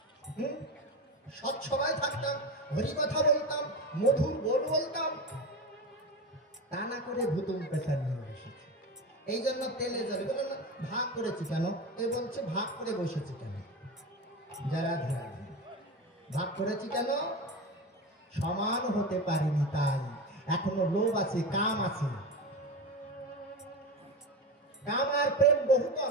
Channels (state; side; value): normal; both; correlation 0.23